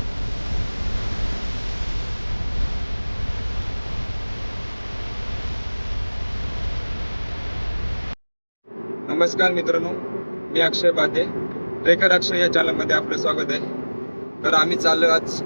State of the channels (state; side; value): inverted; both; correlation -1.00